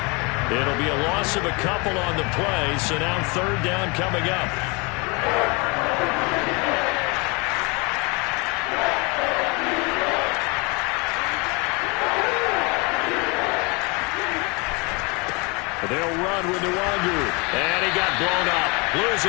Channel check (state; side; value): quieter; right; 29.0 dB